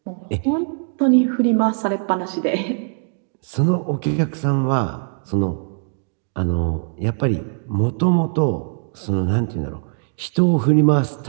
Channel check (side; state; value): left; silent; digital silence